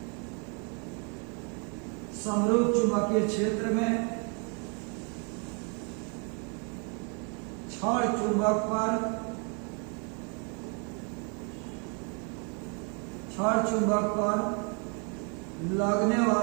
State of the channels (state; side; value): quieter; left; 36.7 dB